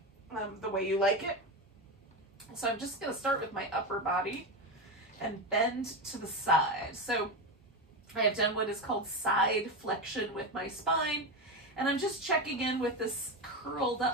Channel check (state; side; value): normal; both; correlation 0.15